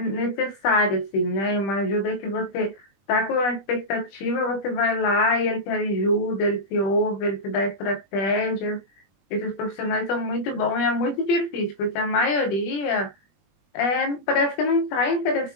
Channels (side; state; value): right; late; 20 ms